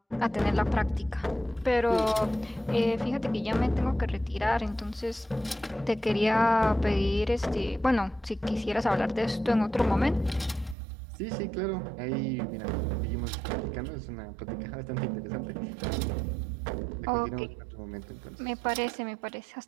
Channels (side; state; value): left; drops out; at 10.8 s